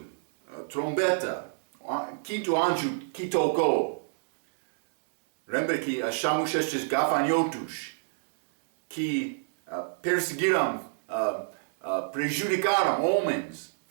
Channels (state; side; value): silent; left; digital silence